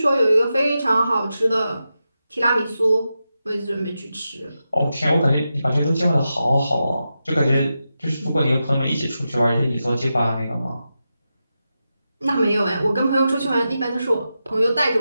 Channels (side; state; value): both; inverted; correlation -0.90